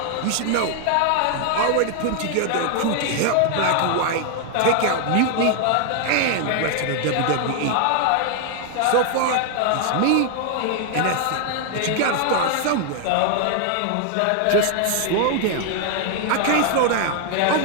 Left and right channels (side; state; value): both; different; correlation 0.00